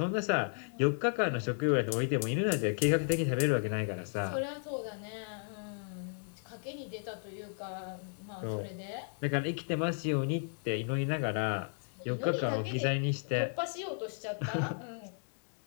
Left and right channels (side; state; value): right; silent; digital silence